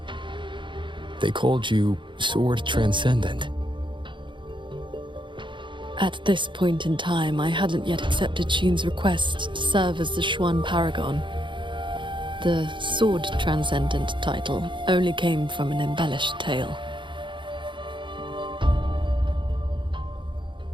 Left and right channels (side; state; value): left; late; 0.23 ms